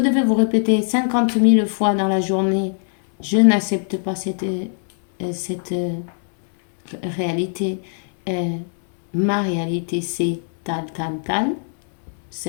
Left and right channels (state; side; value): silent; right; 59 dB below the other